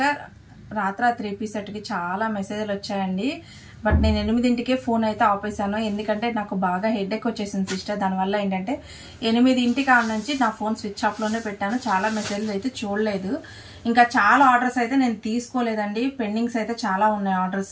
రాత్రి 3 పీస్ సెట్కి చాలా మెసేజ్లు వచ్చాయండి. బట్ నేను 8ంటికే ఫోన్ అయితే ఆపేసాను. ఎందుకంటే నాకు బాగా హెడేక్ వచ్చేసింది సిస్టర్. దానివల్ల ఏంటంటే 8ంటి కాడ నుంచి నా ఫోన్ స్విచ్ ఆఫ్లోనే పెట్టాను. చాలా మెసేజ్లు అయితే చూడలేదు. ఇంకా చాలా ఆర్డర్స్ అయితే నేను తీసుకోలేదండి. పెండింగ్స్ అయితే చాలా ఉన్నాయి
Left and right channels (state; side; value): identical; both; correlation 1.00